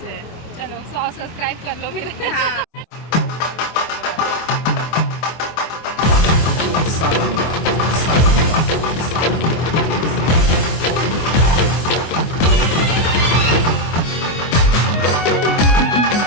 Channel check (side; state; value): right; late; 24 ms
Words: चलो 100 सब्सक्राइब कर लो फिर। सारंगा सारंगा सारंगा